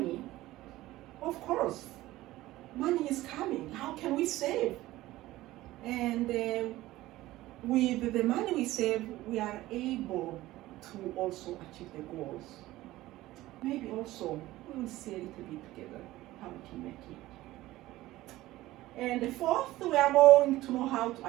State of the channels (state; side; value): quieter; left; 16.8 dB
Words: of course, money is coming. How can we save? And with the money we save, we are able to also achieve the goals. Maybe also we will see a little bit together how we can make it. And the fourth, we are going to know how to